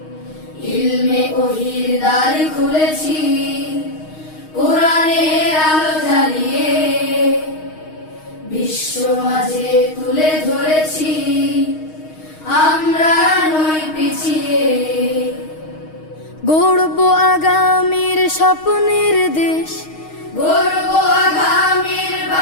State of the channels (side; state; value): right; late; 6.4 ms